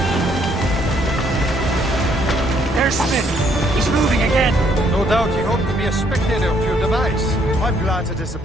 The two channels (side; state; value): both; normal; correlation 0.68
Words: There's Smith. He's moving again. No doubt he hoped to be a spectator of your device. I'm glad to